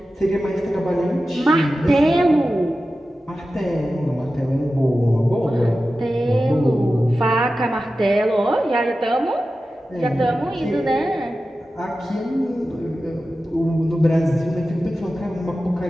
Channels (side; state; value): both; normal; correlation 0.94